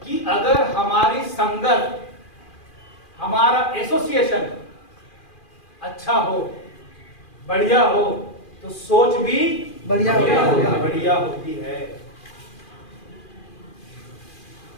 कि अगर हमारी संगत, हमारा एसोसिएशन अच्छा हो, बढ़िया हो, तो सोच भी बढ़िया होती है।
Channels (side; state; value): right; late; 2.4 ms